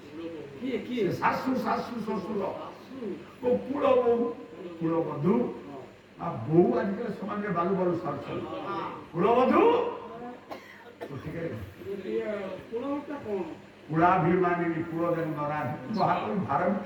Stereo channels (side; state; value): both; identical; correlation 1.00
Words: ସେ ଶାଶୁ ଶାଶୁ ଶ୍ୱଶୁର ମୋ କୂଳ ବୋହୁ କୂଳ ବଧୂ ଆଉ ବୋଉ ଆଜିକାଲି ସମାଜରେ ବାଲୁ ବାଲୁ ସାରୁଛନ୍ତି କୂଳ ବଧୂ କୁଳାଭିମାନିନୀ କୂଳ ଦେନ ନରାଧି ମହାକବି ଭାରତ